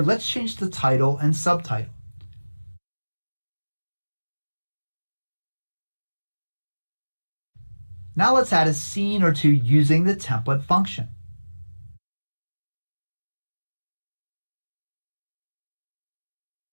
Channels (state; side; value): inverted; both; correlation -1.00